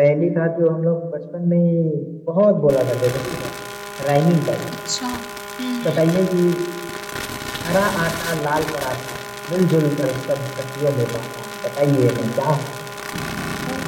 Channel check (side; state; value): both; identical; correlation 1.00